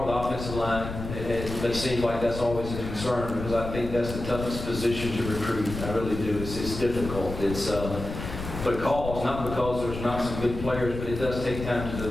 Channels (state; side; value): noise; left; rumble, 7 dB below the sound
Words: with the offensive line. It seems like that's always a concern, because I think that's the toughest position to recruit. I really do. It's difficult. It's because, not because there's not some good players, but it does take time to